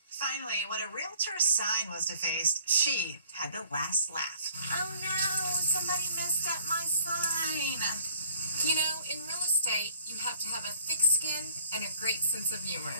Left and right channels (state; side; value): inverted; both; correlation -0.56